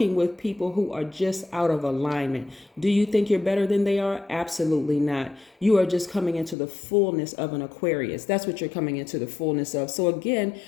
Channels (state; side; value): drops out; right; at 6.6 s